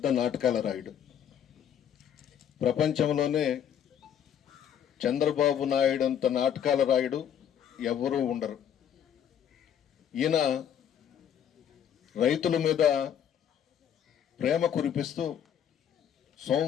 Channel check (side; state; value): right; quieter; 9.1 dB